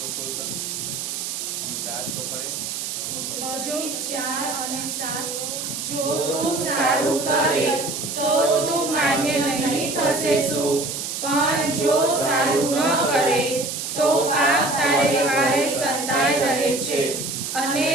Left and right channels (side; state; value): right; noise; hiss, 5 dB below the sound